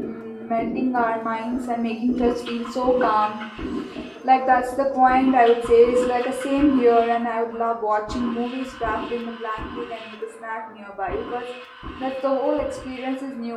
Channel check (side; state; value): both; identical; correlation 1.00